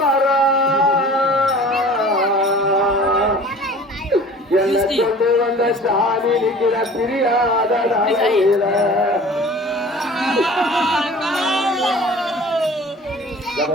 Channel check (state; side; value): normal; both; correlation 0.44